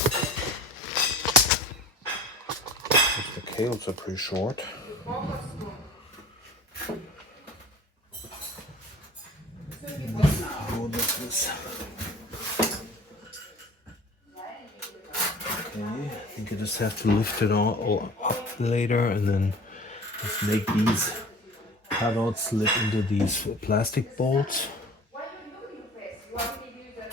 the cables are pretty short. How does this? Okay, I think I just have to lift it all up later and then just make these cutouts slip into these plastic bolts.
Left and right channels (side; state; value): both; normal; correlation 0.43